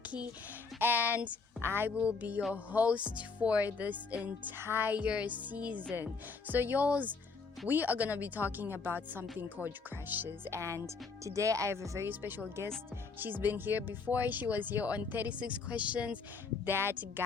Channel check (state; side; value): quieter; right; 4.7 dB